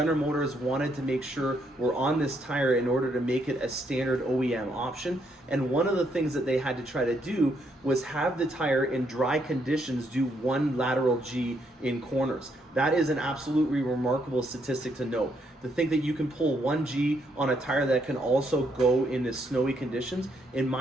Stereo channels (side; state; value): both; normal; correlation 0.74